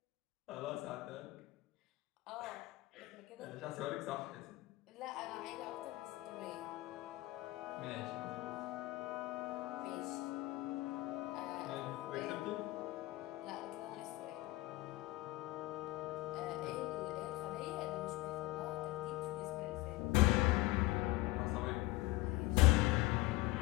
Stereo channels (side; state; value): right; quieter; 19.8 dB